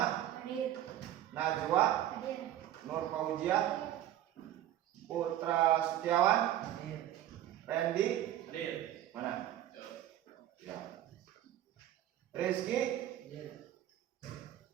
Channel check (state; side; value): quieter; left; 12.4 dB